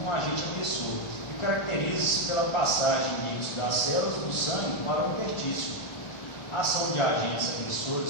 um agente agressor e caracteriza-se pela passagem de líquidos das células do sangue para o interstício. A ação de agentes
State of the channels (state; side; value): late; right; 1.4 ms